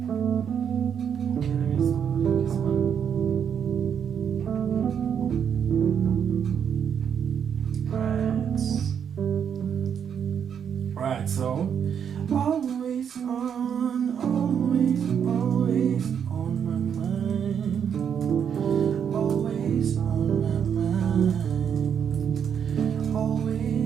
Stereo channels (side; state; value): left; quieter; 7.9 dB